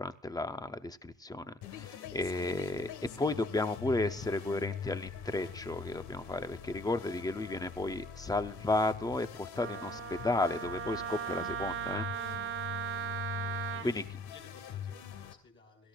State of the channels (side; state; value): both; normal; correlation 0.59